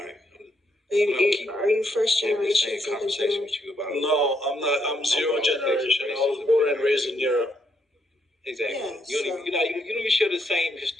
Are you first generation? Conversation with you about no, I'm not. I'm zero generation. I was born and raised in Europe. Exactly. Yeah, you don't even share the same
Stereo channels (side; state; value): both; normal; correlation 0.75